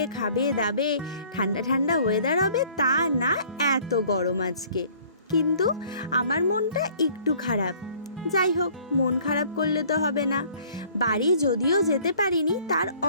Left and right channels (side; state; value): both; inverted; correlation -0.55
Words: খাবে দাবে, ঠান্ডা ঠান্ডা ওয়েদার হবে, তা না, এত গরম আজকে। কিন্তু আমার মনটা একটু খারাপ। যাই হোক, মন খারাপ করলে তো হবে না। বাড়ি যদিও যেতে পারিনি, তার